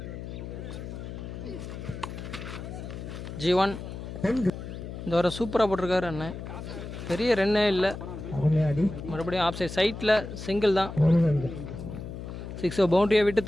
G1 இந்த வர சூப்பராக போட்டிருக்காரு அண்ணன். பெரிய ரன்னே இல்லை. மறுபடியும் ஆஃப் சைட் சைட்டில் சிங்கிள் தான். 6 பவுண்டரியை விட்டு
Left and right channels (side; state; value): left; noise; hum, 9 dB below the sound